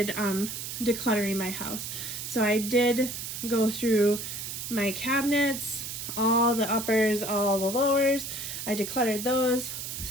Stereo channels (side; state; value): right; noise; hiss, 6 dB below the sound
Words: decluttering my house. So I did go through my cabinets, all the uppers, all the lowers. I decluttered those